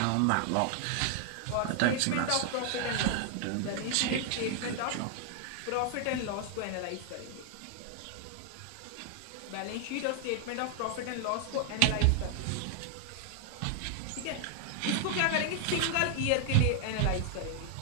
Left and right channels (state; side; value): different; both; correlation 0.00